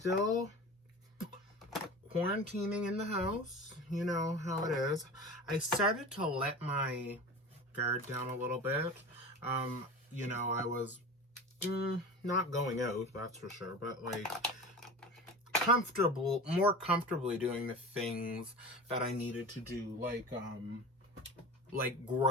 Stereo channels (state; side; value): normal; both; correlation 0.33